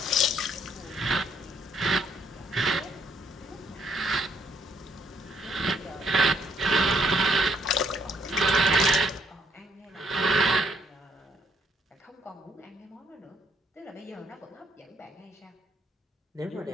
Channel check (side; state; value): both; normal; correlation 0.70